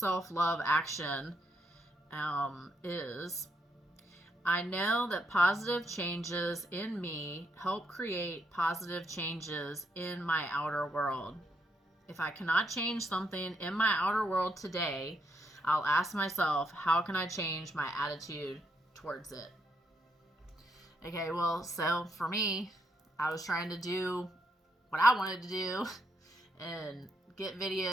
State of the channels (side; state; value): both; normal; correlation 0.77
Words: action is, I know that positive changes in me help create positive changes in my outer world. If I cannot change something in my outer world today, I'll ask myself, how can I change my attitude towards it? Okay, well, so for me, I was trying to do what I wanted to do and get